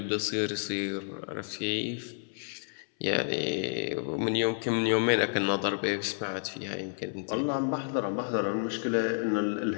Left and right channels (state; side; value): silent; right; 58 dB below the other